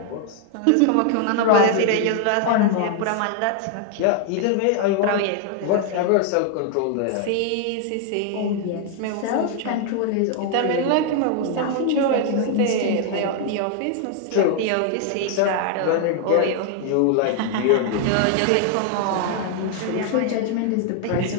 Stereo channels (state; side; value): different; both; correlation 0.00